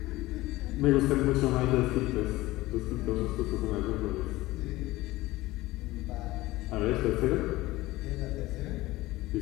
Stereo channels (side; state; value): right; quieter; 18.5 dB